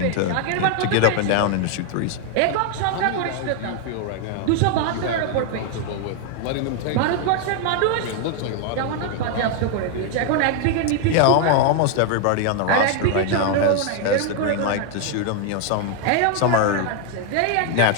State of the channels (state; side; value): different; both; correlation 0.00